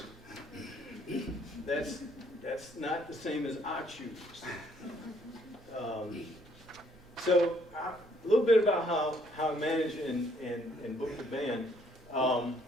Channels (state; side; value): normal; both; correlation 0.66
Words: That's not the same as I choose. So a little bit about how I manage and book the band.